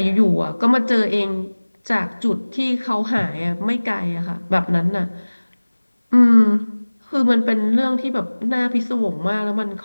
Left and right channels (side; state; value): both; inverted; correlation -1.00